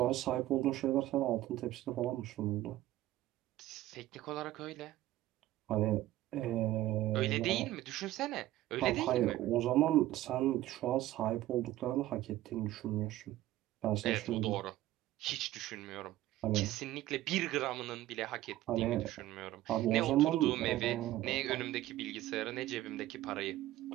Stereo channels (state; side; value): quieter; left; 15.2 dB